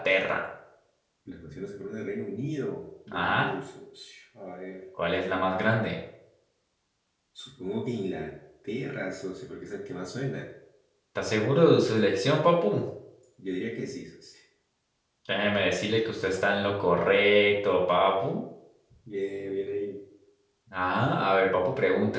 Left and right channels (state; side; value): identical; both; correlation 1.00